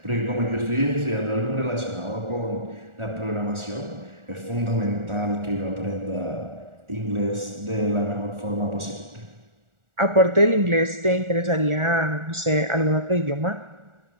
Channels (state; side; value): late; left; 1.4 ms